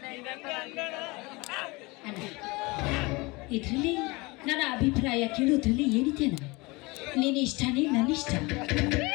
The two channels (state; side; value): quieter; right; 24.6 dB